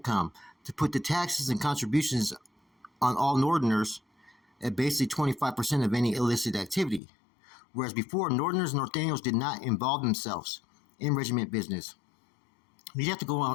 to put the taxes and contributions on all Northerners at basically 25% of any illicit activity. Whereas before, Northerners and Norteños did not involve themselves in regiment business. You'd have to go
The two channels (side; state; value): right; drops out; at 7.0 s